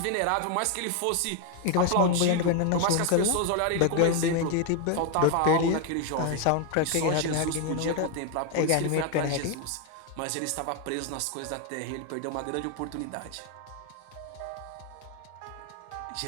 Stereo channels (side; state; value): both; different; correlation 0.00